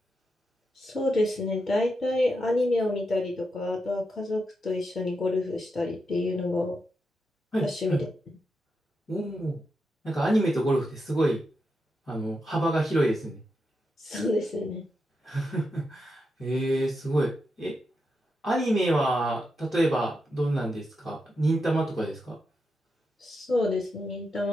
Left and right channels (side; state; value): both; normal; correlation 0.85